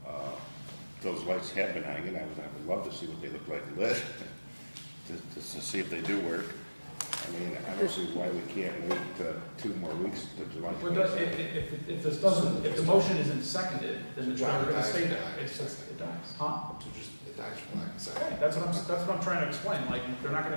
Those lights have been hanging, I would love to see what they look like lit, to see if they do work. I mean, I don't see why we can't wait 2 more weeks to July Well, 26th. if the motion isn't seconded, then it's never gonna stay there. It's just, it dies. Huh? So just, it dies for lack of second. Okay, that's what I'm trying to explain, like, they're not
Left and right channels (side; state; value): both; inverted; correlation -1.00